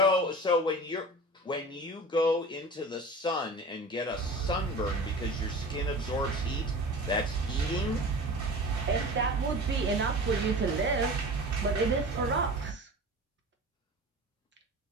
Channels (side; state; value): both; normal; correlation 0.36